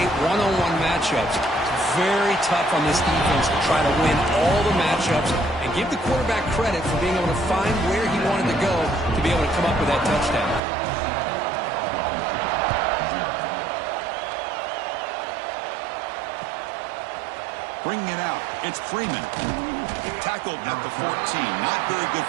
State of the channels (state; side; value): drops out; left; at 10.6 s